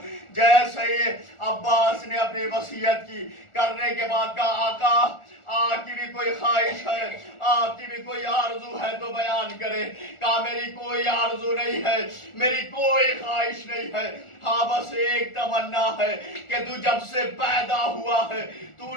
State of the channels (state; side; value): late; right; 1.4 ms